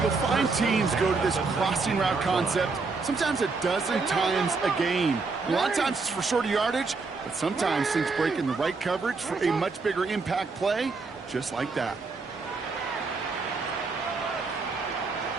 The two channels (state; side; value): quieter; left; 4.2 dB